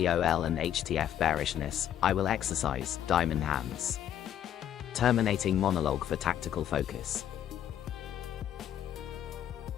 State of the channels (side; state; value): right; quieter; 10.4 dB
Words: and HTF bearishness, I will exercise diamond hands. Terminating monologue for tactical focus.